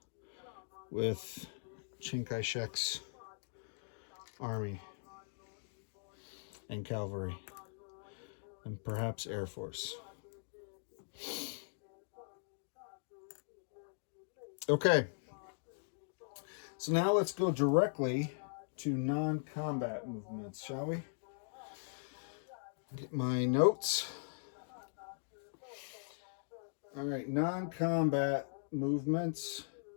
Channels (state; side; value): silent; right; digital silence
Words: with Chiang Kai-shek's army and cavalry and perhaps Air Force. Okay, so now let's go directly to non-combat movements, shall we? Get my notes. All right, non-combat movements.